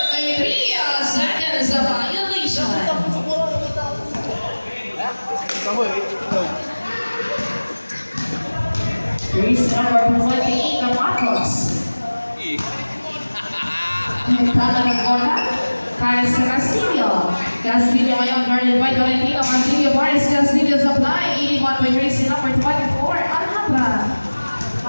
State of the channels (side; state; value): both; inverted; correlation -1.00